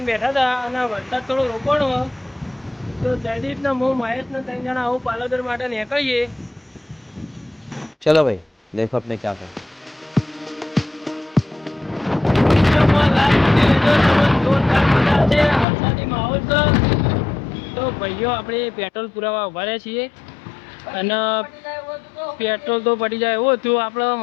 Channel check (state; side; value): drops out; right; at 15.7 s